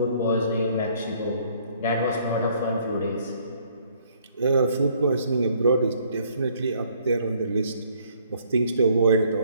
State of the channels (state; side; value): inverted; both; correlation -0.63